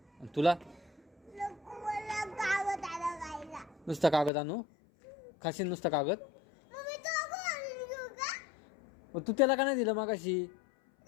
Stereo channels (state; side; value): drops out; right; at 4.3 s